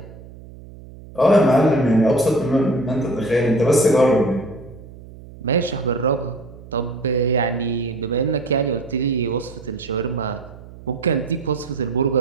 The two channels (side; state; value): right; noise; hum, 18 dB below the sound